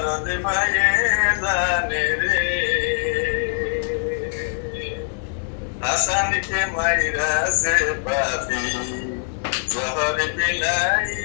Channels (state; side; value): silent; right; digital silence